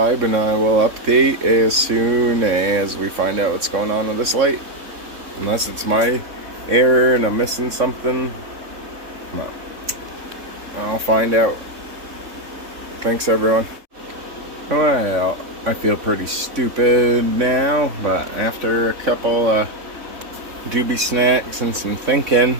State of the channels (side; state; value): left; late; 3.6 ms